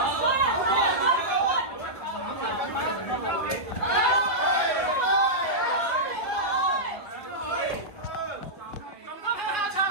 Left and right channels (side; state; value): right; late; 1.8 ms